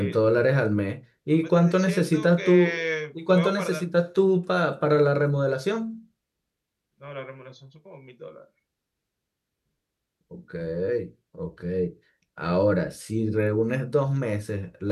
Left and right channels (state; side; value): identical; both; correlation 1.00